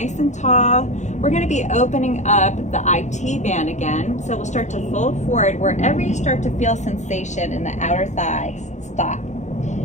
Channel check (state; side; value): late; right; 0.34 ms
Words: and tall. We're gonna be opening up the IT band again. So we'll start to fold forward. Wherever you start to feel sensation in the outer thighs, stop.